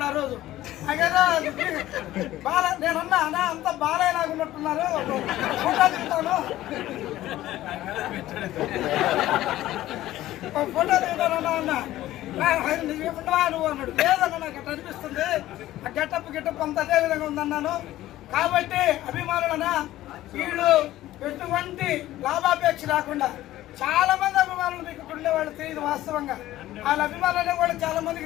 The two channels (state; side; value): quieter; right; 14.9 dB